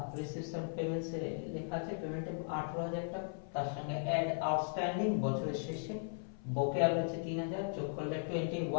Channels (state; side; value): silent; right; 53 dB below the other